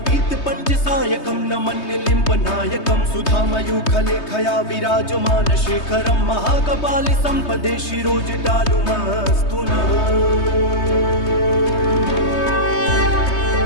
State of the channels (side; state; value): right; late; 3.2 ms